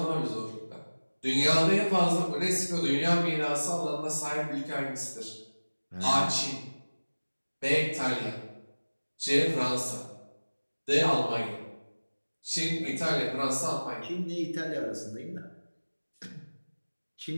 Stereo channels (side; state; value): both; inverted; correlation -1.00